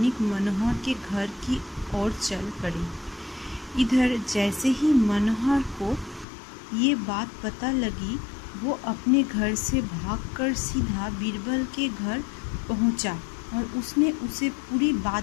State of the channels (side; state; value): right; drops out; at 6.2 s